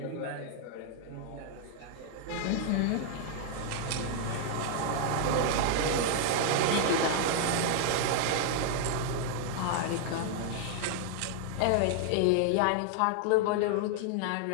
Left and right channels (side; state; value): both; different; correlation 0.00